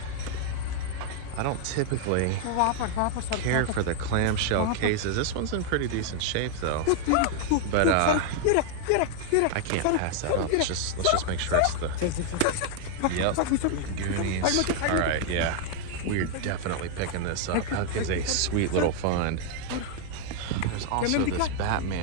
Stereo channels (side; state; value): both; different; correlation 0.00